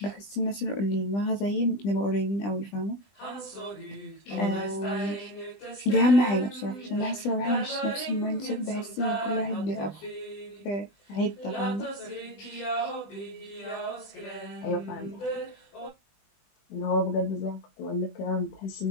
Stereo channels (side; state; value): right; late; 20 ms